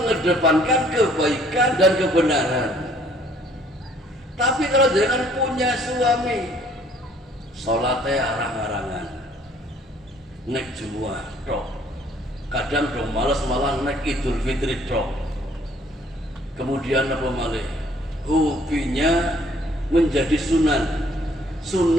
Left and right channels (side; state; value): both; normal; correlation 0.60